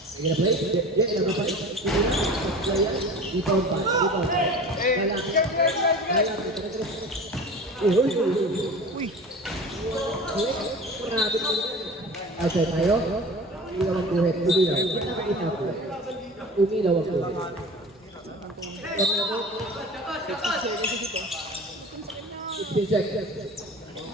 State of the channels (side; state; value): both; normal; correlation 0.37